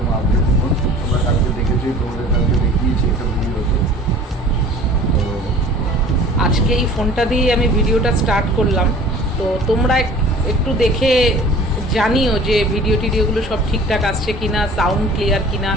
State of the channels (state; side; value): normal; both; correlation 0.46